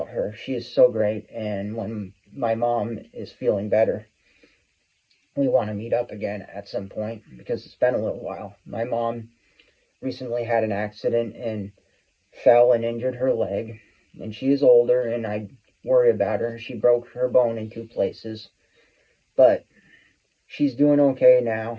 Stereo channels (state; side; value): identical; both; correlation 1.00